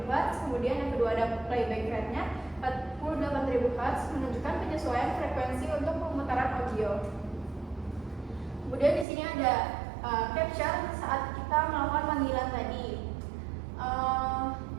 Hz. Kemudian yang kedua ada playback rate-nya 48.000 Hz, menunjukkan penyesuaian frekuensi untuk pemutaran audio. Kemudian di sini ada capture saat kita melakukan panggilan tadi,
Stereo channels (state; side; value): drops out; left; at 9.1 s